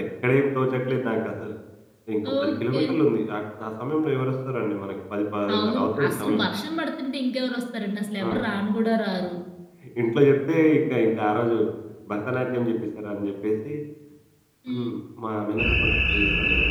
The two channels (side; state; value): both; identical; correlation 1.00